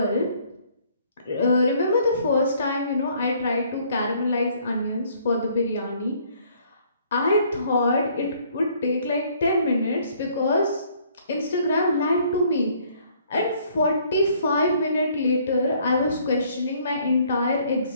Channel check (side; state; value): both; inverted; correlation -0.62